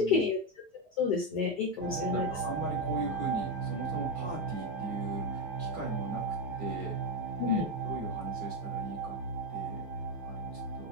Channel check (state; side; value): normal; both; correlation 0.09